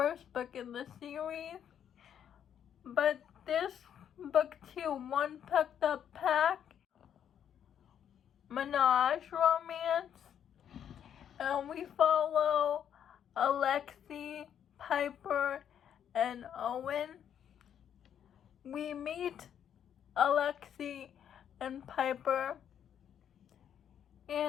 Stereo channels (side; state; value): right; quieter; 9.2 dB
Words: book in the series. But this book too, One Pucked Up Pack, Menage romance, and we follow Alexei, Piper, and Owen. We meet Alexei and Piper